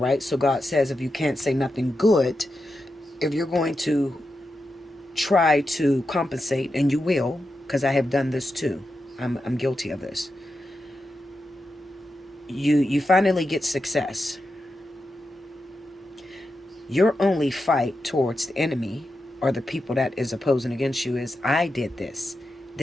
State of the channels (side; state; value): both; normal; correlation 0.88